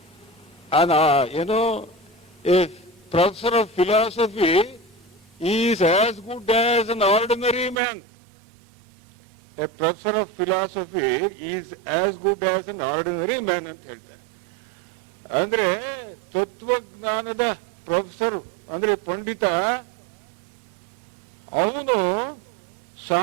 ಏನೋ A professor of philosophy is as good as an ordinary man. A professor of philosophy is as good as an ordinary man ಅಂತ ಹೇಳ್ತಾರೆ. ಅಂದ್ರೆ ತತ್ವಜ್ಞಾನದ ಪ್ರೊಫೆಸರ್ ಅಂದ್ರೆ ಪಂಡಿತ, ಅವನು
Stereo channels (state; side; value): drops out; left; at 7.8 s